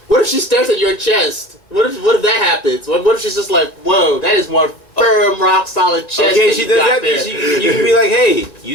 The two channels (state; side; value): late; right; 1.9 ms